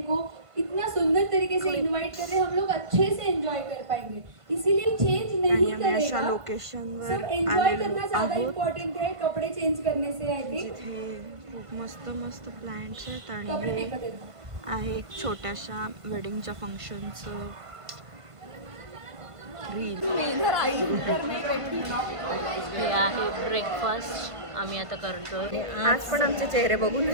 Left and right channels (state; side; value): late; left; 1.5 ms